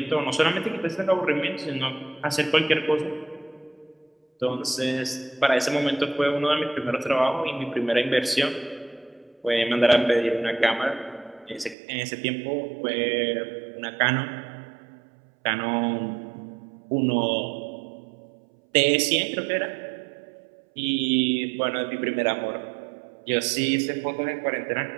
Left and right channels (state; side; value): drops out; left; at 11.8 s